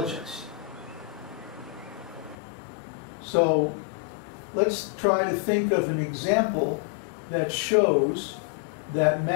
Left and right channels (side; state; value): right; drops out; at 2.4 s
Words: So let's try to think of an example that shows that